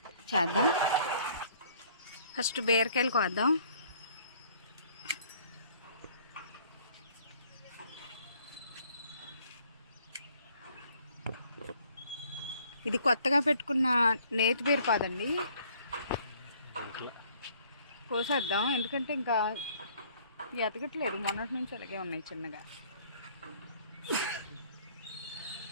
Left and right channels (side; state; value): both; inverted; correlation -0.60